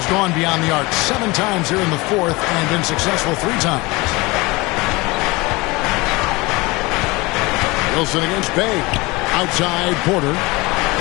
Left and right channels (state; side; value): quieter; right; 23.4 dB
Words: gone beyond the arc 7 times here in the fourth and been successful 3 times. Wilson against Bay. Outside Porter.